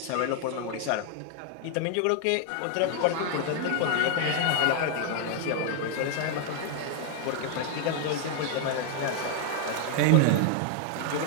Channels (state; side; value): different; both; correlation 0.00